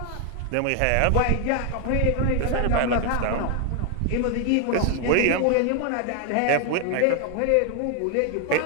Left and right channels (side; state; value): both; different; correlation 0.00